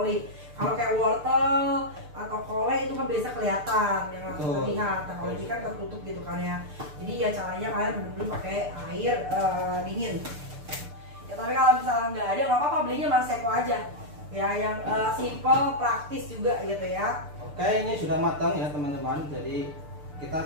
Kalau kayak wortel atau kole itu kan biasa kelihatan yang langsung Betul. terlihat. Nah kalau ini kan tertutup gitu kan ya. Jadi ya caranya kalian bener-bener pakai air dingin. Ya tapi kalau misalnya nggak ada nggak apa-apa, belinya Maseko aja. Ya yang simple, praktis juga gitu ya. Oke, ini sudah matang ya teman-teman. Jadi kita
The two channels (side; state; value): left; late; 6.8 ms